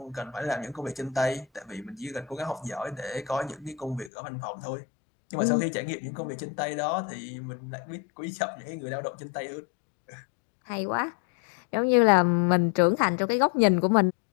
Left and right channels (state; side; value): drops out; right; at 4.1 s